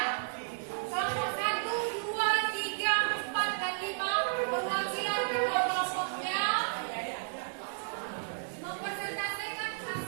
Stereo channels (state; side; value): silent; left; digital silence